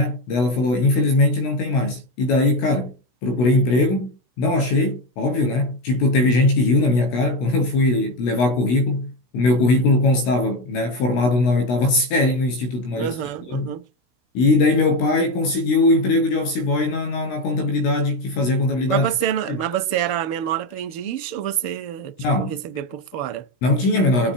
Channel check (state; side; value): late; right; 16 ms